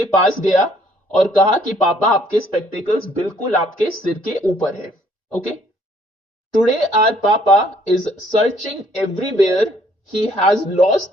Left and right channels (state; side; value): normal; both; correlation 0.63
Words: पास गया और कहा कि पापा आपके स्पेक्टिकल्स बिल्कुल आपके सिर के ऊपर है। ओके, टुडे आवर पापा is searching everywhere, he has